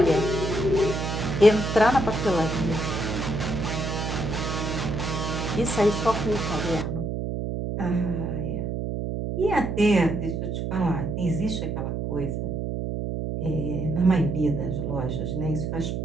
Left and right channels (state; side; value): noise; right; hum, 2 dB below the sound